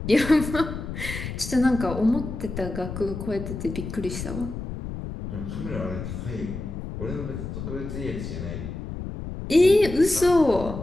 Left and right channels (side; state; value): left; noise; rumble, 7 dB below the sound